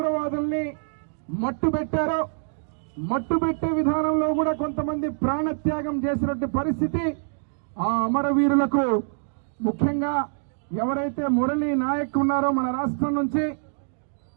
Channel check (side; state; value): left; silent; digital silence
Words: మట్టుబెట్టారో, మట్టుబెట్టే విధానంలో కూడా కొంతమంది ప్రాణత్యాగం చేసినటువంటి పరిస్థితి ఆ అమరవీరులకు, ముఖ్యంగా ఎవరైతే మురళీ నాయక్ ఉన్నారో మన రాష్ట్రం నుంచి,